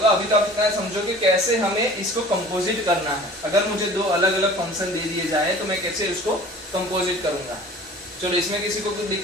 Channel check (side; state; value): both; normal; correlation 0.45